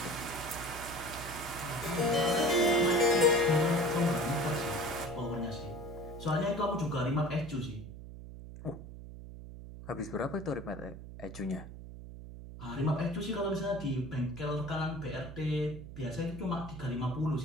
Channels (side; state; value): right; noise; hum, 12 dB below the sound